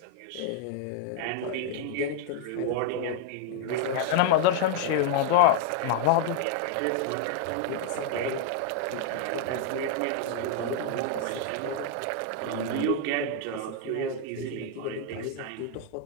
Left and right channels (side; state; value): both; different; correlation 0.00